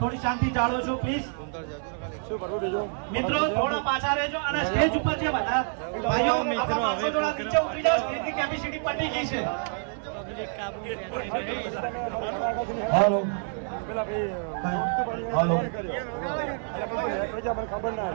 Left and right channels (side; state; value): left; silent; 60 dB below the other